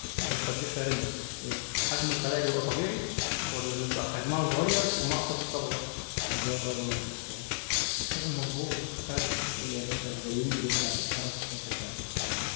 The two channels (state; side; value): silent; right; digital silence